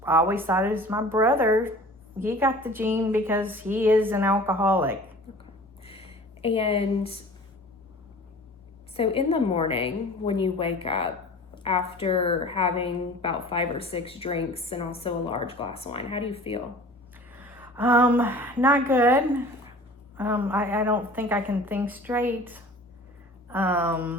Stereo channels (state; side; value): normal; both; correlation 0.43